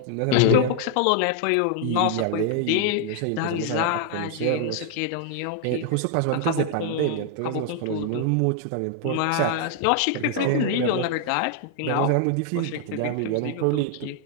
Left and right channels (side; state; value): both; different; correlation 0.00